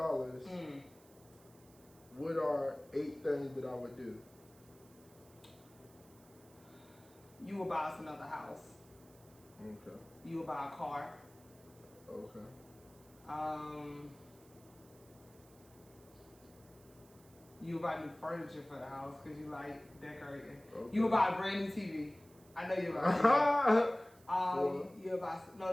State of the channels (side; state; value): right; noise; hiss, 26 dB below the sound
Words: what are 8 things that I would do? You will buy us another house. Okay. You will buy a car. Okay. You will buy new furniture for the house because you like decorating. Okay. You will buy a brand new TV. I know you'll buy that. You'll buy